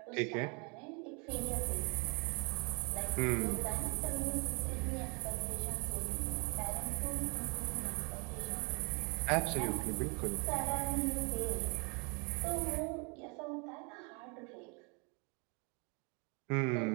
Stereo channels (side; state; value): left; quieter; 33.1 dB